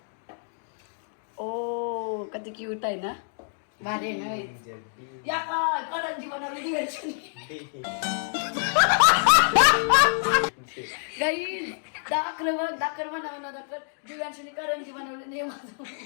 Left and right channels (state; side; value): silent; right; digital silence